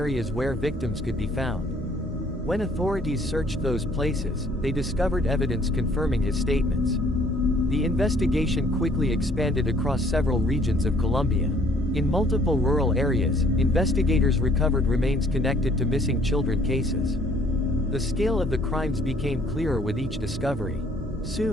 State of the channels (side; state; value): both; normal; correlation 0.60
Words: where victims could be found. When authorities searched those places, they discovered evidence confirming his statements. The investigation quickly expanded across several regions of Colombia. In multiple rural areas, investigators recovered remains connected to missing children cases. The scale of the crimes became clearer with each discovery.